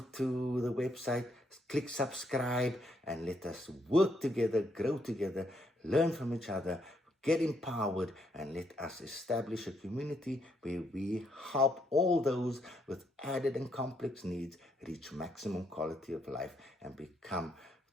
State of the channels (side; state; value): both; normal; correlation 0.74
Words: the website, click subscribe, and let us work together, grow together, learn from each other, get empowered, and let us establish a community where we help all those with added and complex needs reach maximum quality of life and become